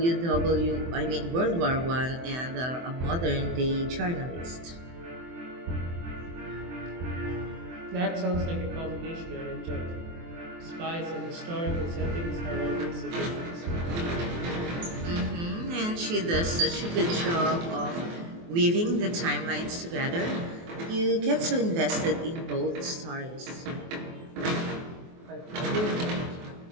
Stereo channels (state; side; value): late; left; 24 ms